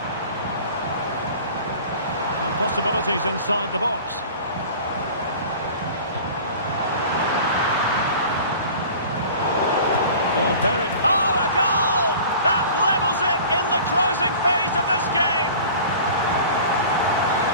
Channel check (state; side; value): inverted; both; correlation -0.42